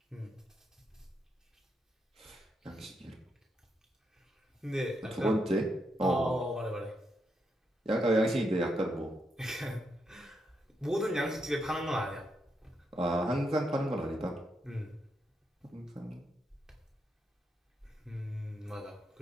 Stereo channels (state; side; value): normal; both; correlation 0.81